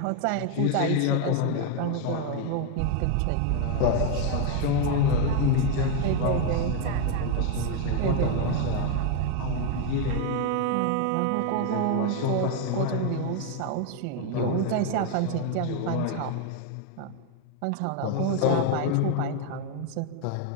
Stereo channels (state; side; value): different; both; correlation 0.01